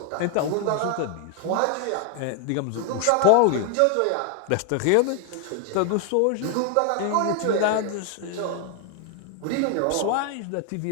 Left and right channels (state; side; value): different; both; correlation 0.00